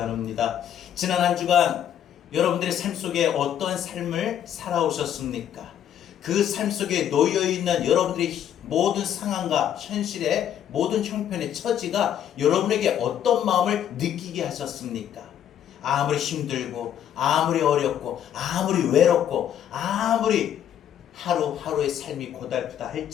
지난 한 주간 여러분들의 삶 속에 어떠한 삶을 살아오셨습니까? 그 삶 속에 놓여있는 여러분들의 모든 상황과 현실의 모든 형편의 처지가 여러분에게 어떤 마음을 느끼게 하셨습니까? 아무리 힘들고 아무리 어렵고 아무리 외롭고 아무리 하루하루의 삶이 고달프다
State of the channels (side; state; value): right; quieter; 10.0 dB